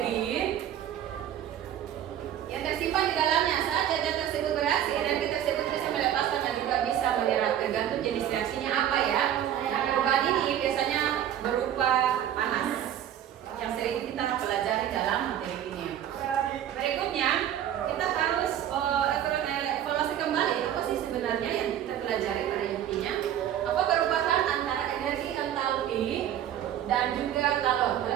dan juga kalor.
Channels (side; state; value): left; quieter; 10.7 dB